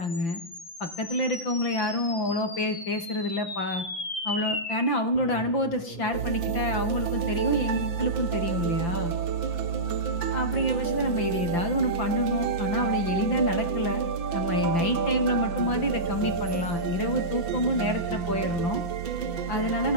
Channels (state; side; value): late; right; 5.9 ms